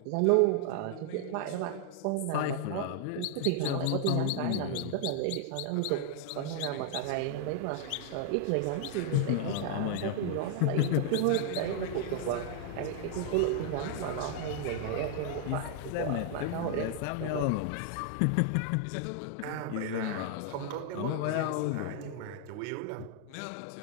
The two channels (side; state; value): both; different; correlation 0.00